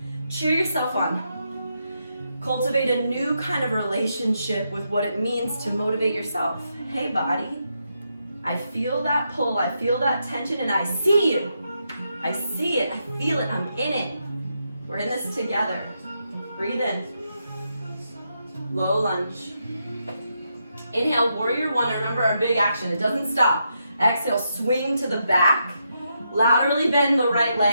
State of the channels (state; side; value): inverted; both; correlation -0.82